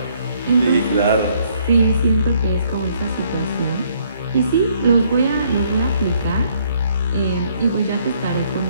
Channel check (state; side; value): inverted; both; correlation -0.67